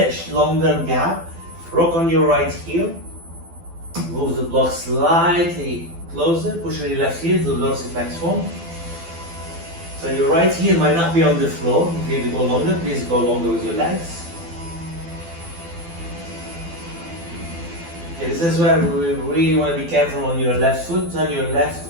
longer gap. Rock on your right heel. Move the block slightly closer. Push on your left heel to the dorsiflex form. So your right heel might not be on the floor. If you need to go longer, please go longer with your legs. Okay, this is where we really want to be careful on your left foot. Turn your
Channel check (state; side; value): late; left; 12 ms